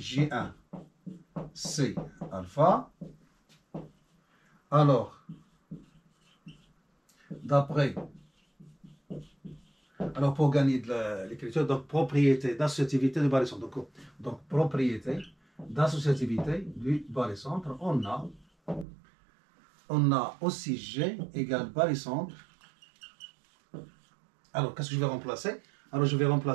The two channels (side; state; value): left; drops out; at 18.9 s